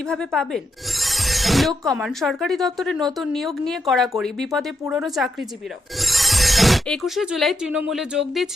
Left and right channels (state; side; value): normal; both; correlation 0.83